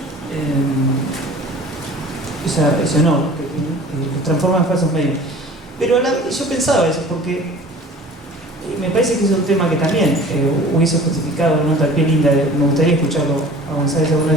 ese honor, que los transforma en falsos mediums. Pero yo pensaba eso, porque me parece que es un tema que también hubiese justificado una nota al pie linda, me gustaría escucharlo a González alguna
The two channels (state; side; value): normal; both; correlation 0.44